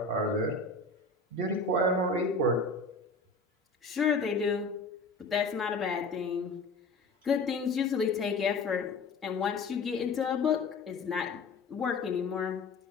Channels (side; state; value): right; quieter; 3.6 dB